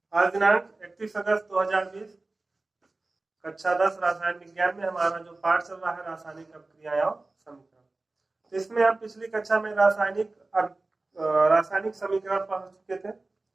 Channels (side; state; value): left; quieter; 3.2 dB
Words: आज दिनांक 31 अगस्त 2020 कक्षा 10 रसायन विज्ञान में हमारा जो पाठ चल रहा है रासायनिक अभिक्रियाएं और समीकरण, तो इसमें हम पिछली कक्षा में रासायनिक समीकरण पढ़ चुके थे।